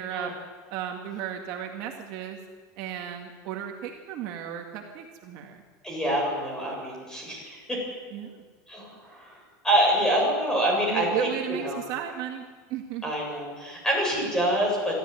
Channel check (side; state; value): both; normal; correlation 0.34